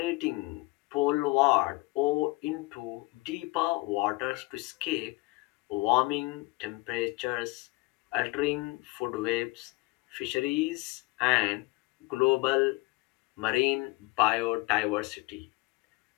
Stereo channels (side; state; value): right; quieter; 24.0 dB